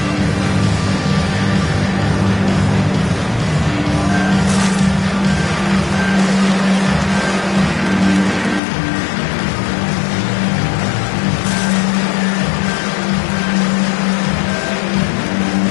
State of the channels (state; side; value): drops out; right; at 8.6 s